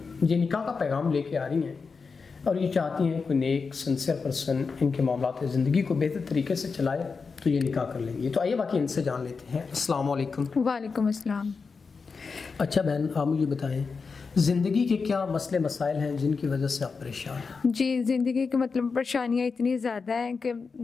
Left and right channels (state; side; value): quieter; right; 4.9 dB